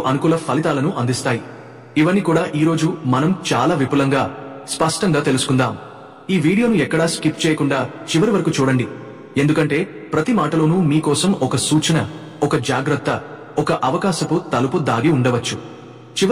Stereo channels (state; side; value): identical; both; correlation 1.00